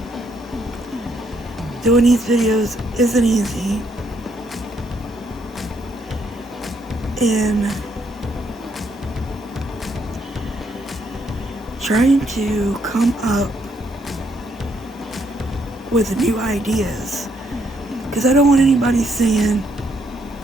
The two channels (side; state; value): both; normal; correlation 0.73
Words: Doing these videos isn't easy. And trying to come up with new ideas, because I don't want anybody saying